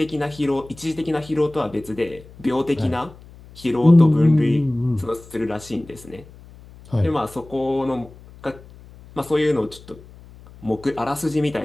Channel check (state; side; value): noise; left; hum, 21 dB below the sound